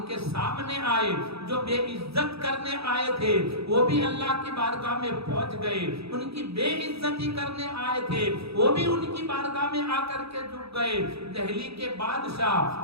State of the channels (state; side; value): late; left; 0.77 ms